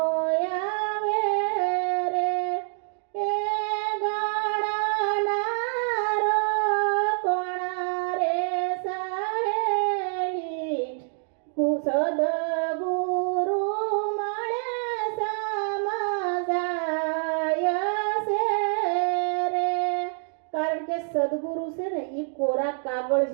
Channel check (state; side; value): silent; left; 60 dB below the other